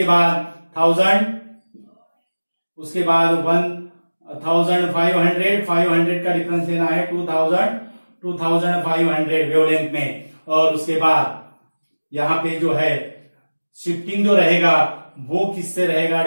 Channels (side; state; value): both; inverted; correlation -1.00